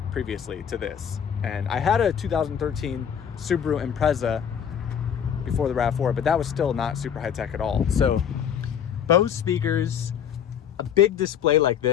previously to this, and I had a 2013 Subaru Impreza before the RAV4, but that was still not super high tech at all. So Bose speakers, a big display like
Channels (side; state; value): right; quieter; 8.4 dB